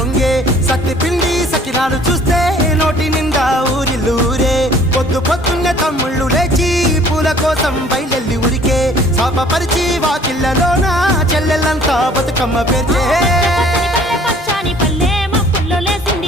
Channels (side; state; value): both; normal; correlation 0.54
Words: సత్తి పిండి సకినాలు చూస్తే నోటి నిండా ఊరిల్లూరే పొద్దు పొద్దున్నే తమ్ముళ్ళు లేచి పూల కోసం బయలెల్లి ఉరికే శాపపరిచి వాకిళ్ళలోన చెల్లెళ్ళంతా బతుకమ్మ పేర్చే